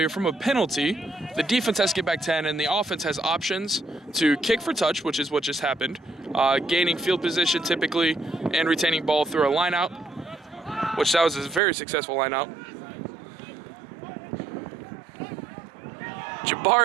from a penalty, the defense has to get back 10 and the offense has options to kick for touch, which is what just happened, gaining field position typically, and retaining ball through a line out, which that was a very successful line out.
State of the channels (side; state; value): left; drops out; at 11.6 s